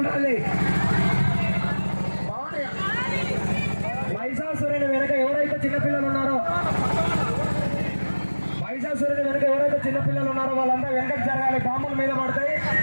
మహిషాసురుని వెనక ఎవరైతే చిన్నపిల్లలు ఉన్నారో వాళ్ళంతా వెనకకు జరగాలి. పాముల మీద పడతాయి.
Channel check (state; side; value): inverted; both; correlation -1.00